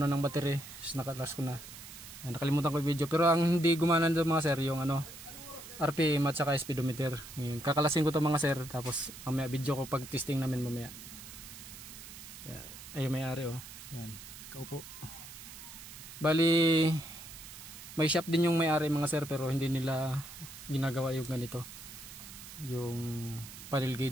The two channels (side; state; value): right; noise; hiss, 14 dB below the sound